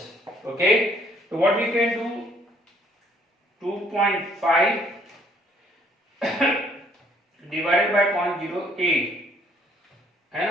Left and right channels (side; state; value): both; normal; correlation 0.63